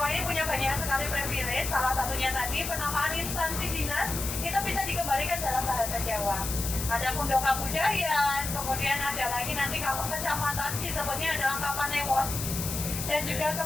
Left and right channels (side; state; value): left; noise; hiss, 5 dB below the sound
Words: ini punya banyak sekali privilege. Salah satunya tadi penamaan instansi dinas itu bisa dikembalikan dalam bahasa Jawa. Ada Kundoka Budaya, kemudian ada lagi nanti kalau kecamatan disebutnya adalah Kapanewon, dan juga